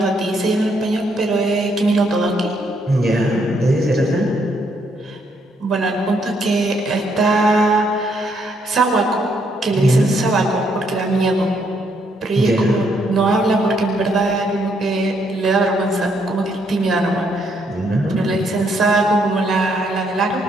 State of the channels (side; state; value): both; normal; correlation 0.72